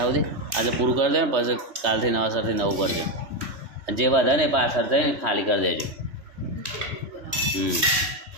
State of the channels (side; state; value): left; late; 3.2 ms